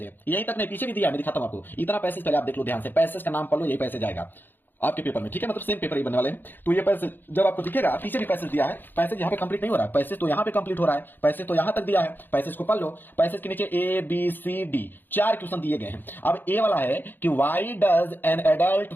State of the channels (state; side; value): late; right; 0.093 ms